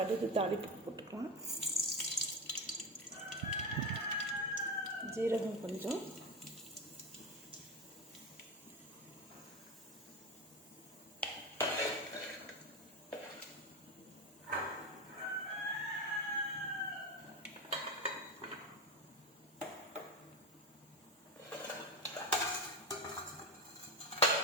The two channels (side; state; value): both; normal; correlation 0.18